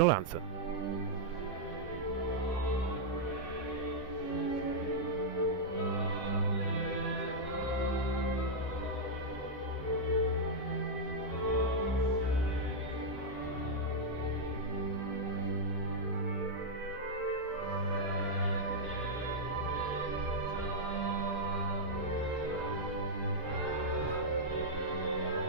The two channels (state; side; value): normal; both; correlation -0.05